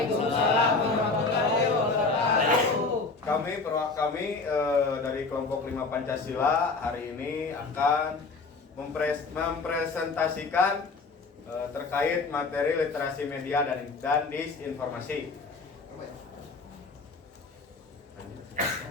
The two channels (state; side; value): quieter; right; 4.0 dB